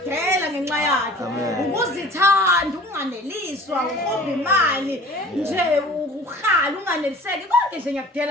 ngenxa yakhe ukuzithanda unganeliswa ukhomba imali nje ukhala unganeliseki konke nje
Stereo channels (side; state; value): both; normal; correlation 0.45